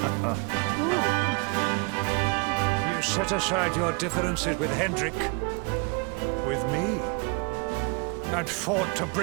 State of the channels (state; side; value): quieter; left; 31.8 dB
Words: You set aside your differences with Hendrik, with me, and fought to